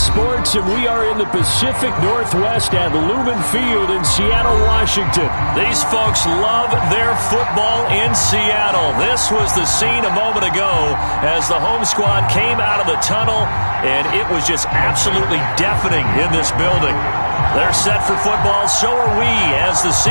and we are in the Pacific Northwest at Lumen Field in Seattle, Washington. These folks love their football in Seattle. This was the scene a moment ago as the home squad came out of the tunnel, and it was just absolutely deafening in this building. They're set for football, so are we, as the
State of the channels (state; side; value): inverted; both; correlation -1.00